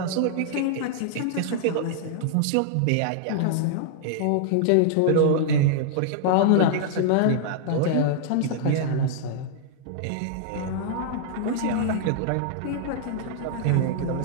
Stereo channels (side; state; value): both; different; correlation -0.01